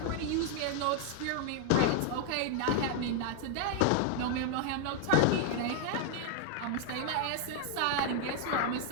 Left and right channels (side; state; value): both; different; correlation 0.00